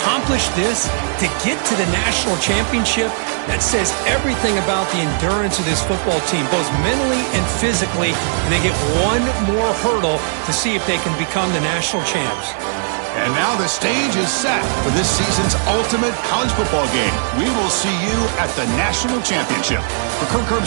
this, to get to the national championship, that says everything about the endurance of this football team, both mentally and physically, and they get one more hurdle to see if they can become the national champs. And now the stage is set for this season's ultimate college football game. We will see you at the national championship. For Kirk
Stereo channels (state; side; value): silent; left; digital silence